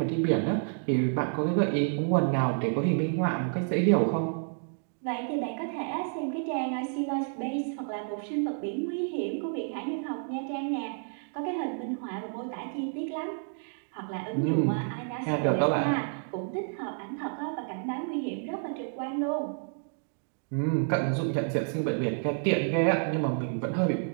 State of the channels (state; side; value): silent; left; 56 dB below the other